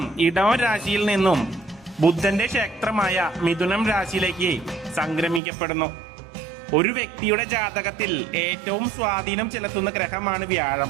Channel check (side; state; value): left; drops out; at 5.4 s